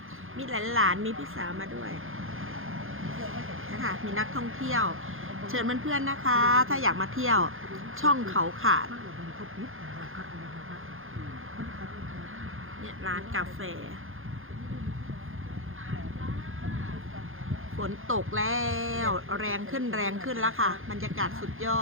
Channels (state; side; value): late; left; 0.60 ms